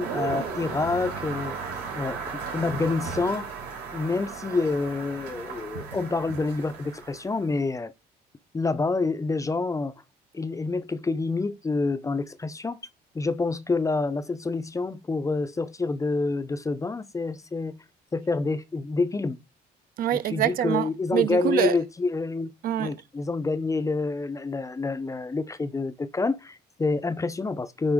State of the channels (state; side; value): normal; both; correlation 0.74